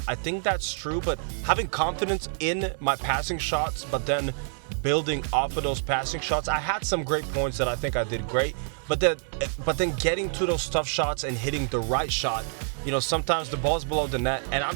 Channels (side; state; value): left; silent; digital silence